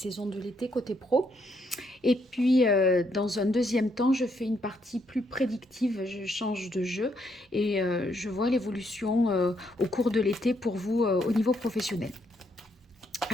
de l'été côté pro. Et puis, dans un deuxième temps, je fais une partie plus prédictive, je change de jeu et je vois l'évolution au cours de l'été pour vous au niveau professionnel.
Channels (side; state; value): both; normal; correlation 0.74